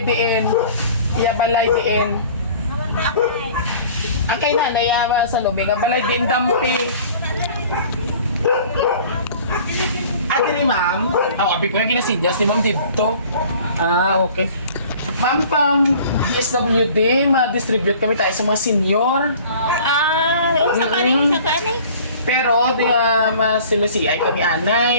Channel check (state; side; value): inverted; both; correlation -0.48